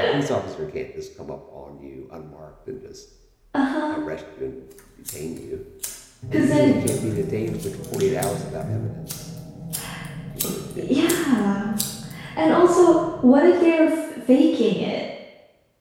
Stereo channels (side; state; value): both; identical; correlation 1.00